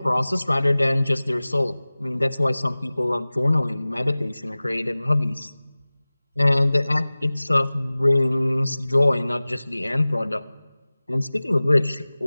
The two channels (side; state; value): both; inverted; correlation -0.99